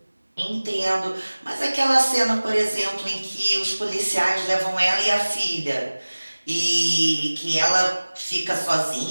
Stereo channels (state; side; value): inverted; both; correlation -1.00